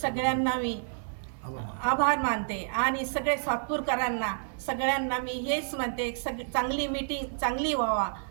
सगळ्यांना मी आभार मानते आणि सगळे सातपूरकरांना सगळ्यांना मी हेच म्हणते, चांगली मीटिंग चांगली व्हावा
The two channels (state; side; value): silent; left; 58 dB below the other